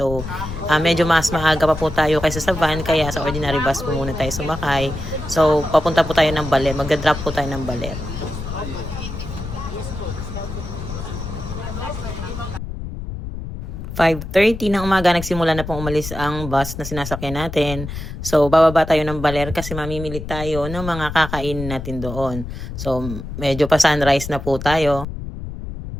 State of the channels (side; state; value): left; noise; rumble, 8 dB below the sound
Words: medyo mas maaga pa po tayo kaysa sa van, kaya sa ordinary bus po muna tayo sumakay. So, papunta po tayo ng Baler. Magdadrop po tayo ng Baler. 5:30 ng umaga, nagsimula na pong umalis ang bus na sinasakyan natin. So, bababa tayo ng Baler kasi mamimili tayo ng mga kakain natin doon. So, medyo pa sunrise na po tayo.